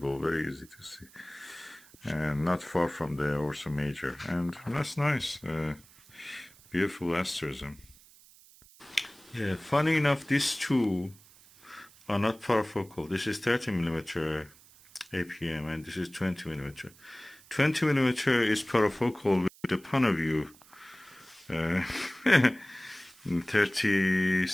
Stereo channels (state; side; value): noise; right; hiss, 25 dB below the sound